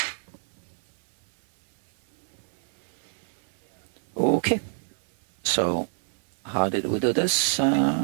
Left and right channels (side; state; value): left; silent; 58 dB below the other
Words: Okay. So how did we do this?